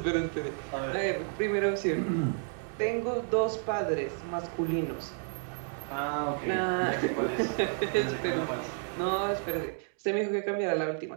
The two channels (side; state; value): left; silent; 57 dB below the other